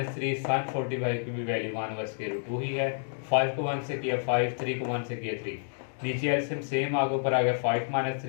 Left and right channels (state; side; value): silent; right; digital silence